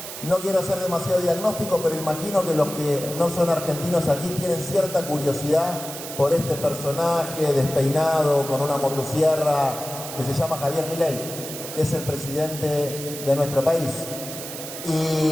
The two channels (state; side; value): noise; right; hiss, 9 dB below the sound